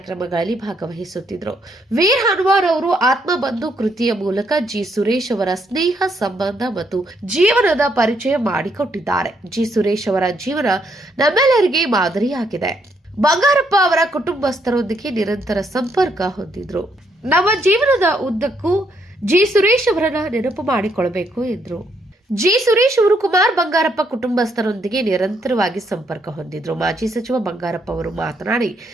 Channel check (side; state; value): both; normal; correlation 0.73